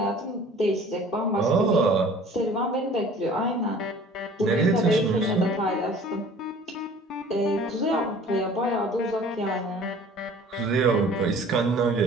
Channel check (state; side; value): normal; both; correlation 0.48